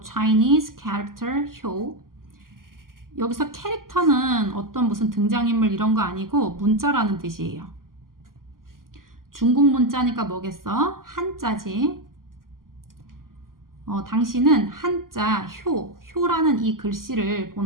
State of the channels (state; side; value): late; left; 0.91 ms